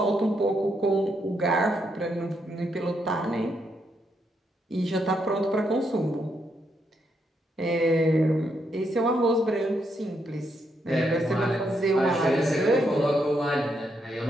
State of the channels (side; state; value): both; normal; correlation 0.78